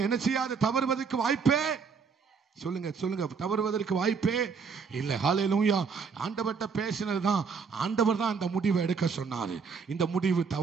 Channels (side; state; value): left; quieter; 5.6 dB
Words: என்ன செய்யாது, தவறுவதற்கு வாய்ப்பே சொல்லுங்க, தவறுவதற்கு வாய்ப்பே இல்லை. ஹல்லேலூயா. ஆண்டவர்கிட்ட பேசினதுதான், ஆண்டவர் தான் அந்த முடிவை எடுக்க சொன்னாரு. இந்த முடிவு